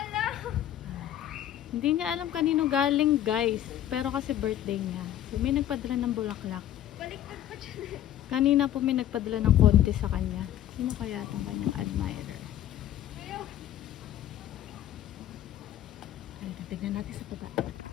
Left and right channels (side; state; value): right; quieter; 11.8 dB